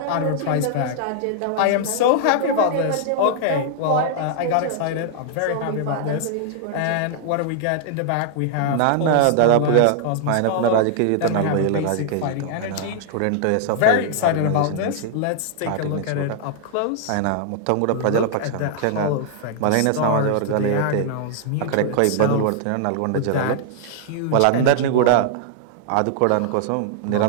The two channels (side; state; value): both; different; correlation -0.01